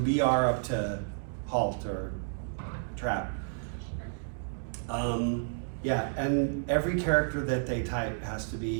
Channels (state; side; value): silent; left; digital silence